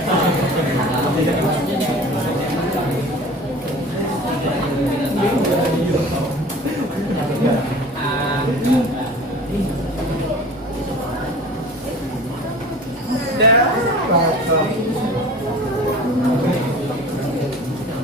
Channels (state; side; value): normal; both; correlation 0.41